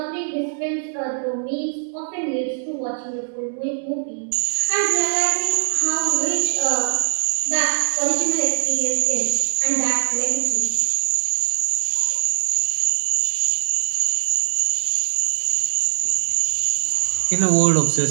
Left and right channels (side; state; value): left; silent; digital silence